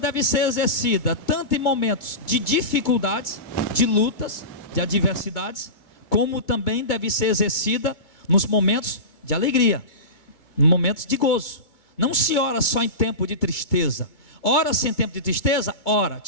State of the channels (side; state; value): right; late; 2.2 ms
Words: ser exercida tanto em momentos de dificuldades, de lutas, de adversidades, como também deve ser exercida nos momentos de alegria, nos momentos de gozo. Não se ora só em tempo de tristeza. Ora-se em tempo de tristeza? Ora.